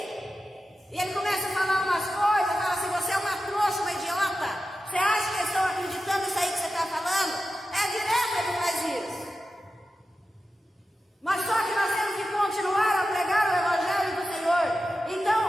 e ele começa a falar umas coisas, fala assim, você é uma trouxa, uma idiota. Você acha que eles estão acreditando nisso aí que você está falando? É direto ele faz isso. Mas só que nós temos que continuar a pregar o Evangelho do Senhor. Então,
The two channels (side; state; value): both; normal; correlation 0.92